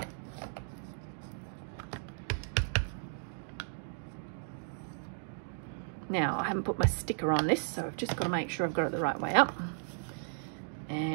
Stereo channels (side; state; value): left; silent; digital silence